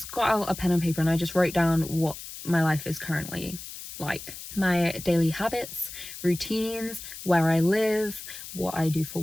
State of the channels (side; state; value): left; noise; hiss, 12 dB below the sound